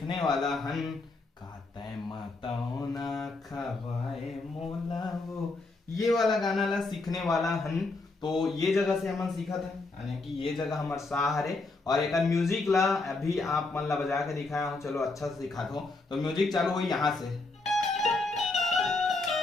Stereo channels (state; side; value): quieter; right; 3.4 dB